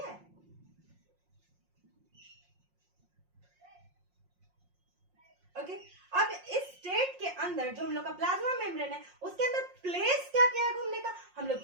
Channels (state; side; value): late; left; 5.6 ms